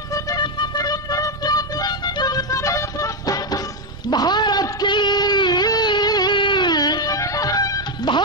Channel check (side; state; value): both; normal; correlation 0.06